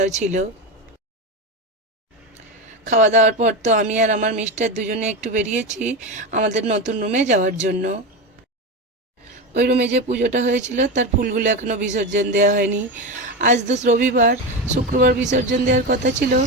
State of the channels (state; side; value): normal; both; correlation 0.18